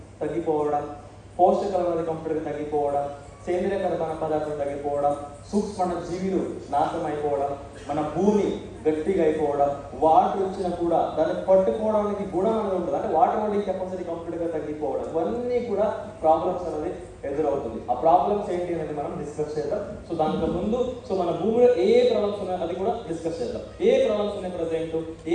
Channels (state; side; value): identical; both; correlation 1.00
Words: తగ్గిపోవడం, పోషకాలు అనేది కంప్లీట్గా తగ్గిపోవడం, సేంద్రియ కర్బన పదార్థం తగ్గిపోవడం, సూక్ష్మ జీవులు నాశనం అయిపోవడం, మన భూమి గట్టిగా అయిపోవడం, వాటర్ వచ్చినా కూడా దాన్ని పట్టుకోవడానికి గుణం అనేది ఉంటుంది, అంటే వాటర్ హోల్డింగ్ కెపాసిటీ కంప్లీట్గా తగ్గిపోవడం, ఇవన్నీ కూడా ప్రాబ్లమ్స్ అనేది ఎదురవుతుంది. ఆ ప్రాబ్లమ్స్ ఏంటి అనేది మనం డిస్కస్ చేద్దాం. సో దానికి ముందు మన భూమిలో ఏ ప్రాబ్లమ్స్ ఉన్నాయో అది కూడా డిస్కస్ చేద్దాం. ఏ ప్రాబ్లమ్స్ ఉన్నాయి ప్రజెంట్,